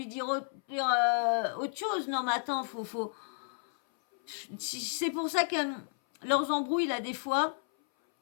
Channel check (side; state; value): right; silent; 56 dB below the other